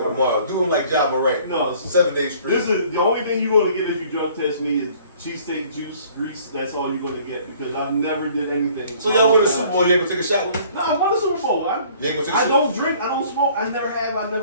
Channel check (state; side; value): inverted; both; correlation -0.55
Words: tomorrow. Do him like Ja Morant. No, 7 days straight. This is the only thing you're going to get if you drug test me is cheesesteak juice, grease. That's all you're going to get because I've never did anything. So y'all win the Super Bowl, you ain't gonna take a shot with me? No, I won the Super Bowl. You ain't gonna take a I shot? don't drink. I don't smoke. I never have. I